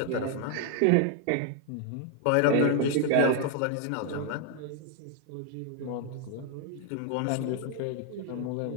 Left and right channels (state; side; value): different; both; correlation 0.00